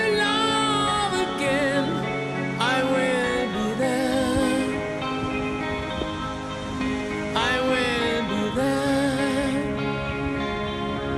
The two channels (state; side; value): identical; both; correlation 1.00